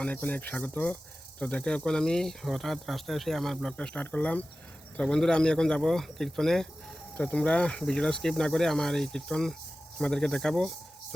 অনেক অনেক স্বাগত। তো দেখো, এখন আমি হঠাৎ রাস্তায় এসে আমার ব্লগটা স্টার্ট করলাম। তো বন্ধুরা, আমি এখন যাব কীর্তনে। তো তোমরা ভিডিওটা স্কিপ না করে আমার এই কীর্তন তোমাদেরকে দেখাবো,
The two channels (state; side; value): normal; both; correlation 0.95